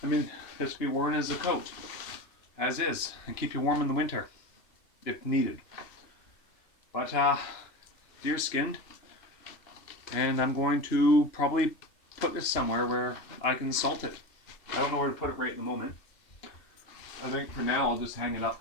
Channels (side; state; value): right; late; 2.7 ms